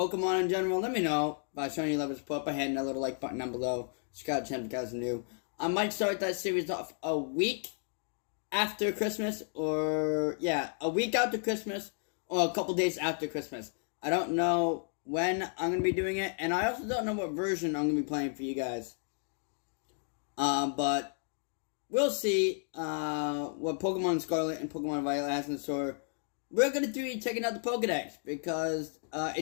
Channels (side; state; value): right; silent; 56 dB below the other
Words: in general, let me know by showing your love and support by hitting that little like button down below. Scarlett if you guys are new. I might start that series off a week after Christmas, or a week after Christmas, or a couple days after Christmas. I don't know when I'm going to be doing it, and I also don't know what version I'm going to be playing for you guys. But we'll see what Pokemon Scarlet and Pokemon Violet has in store. We're going to be checking out the Pokedex because